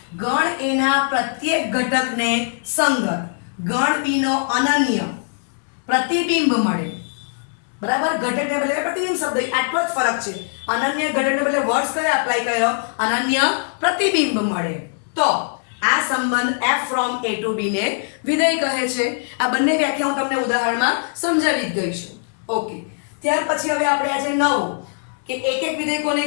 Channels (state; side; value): silent; right; 65 dB below the other